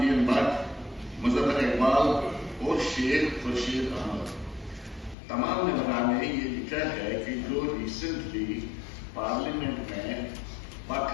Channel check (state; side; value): drops out; right; at 5.2 s